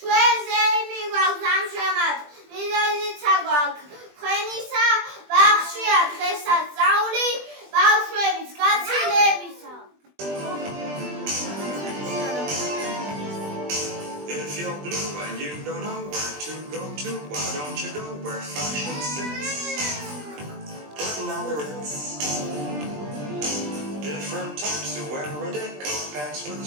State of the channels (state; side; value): late; left; 20 ms